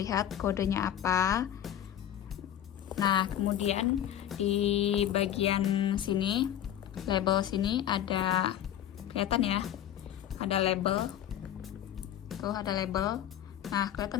kodenya apa. Nah, kemudian di bagian sini, label sini ada, kelihatan ya, ada label. Tuh ada label. Nah,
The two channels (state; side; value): quieter; right; 11.0 dB